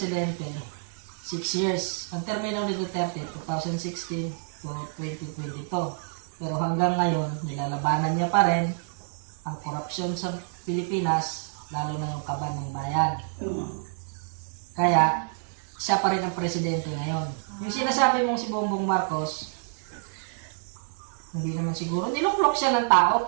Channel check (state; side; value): silent; left; 60 dB below the other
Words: 6 years. Ang termino ni Duterte, 2016 to 2022. Pero hanggang ngayon, nilalabanan niya pa rin ang korupsyon sa Pilipinas, lalo na yung kaban ng bayan. Kaya, siya pa rin ang presidente ngayon. Yung sinasabi mong si Bongbong Marcos, hindi naman siguro. Niluklok siya ng tao,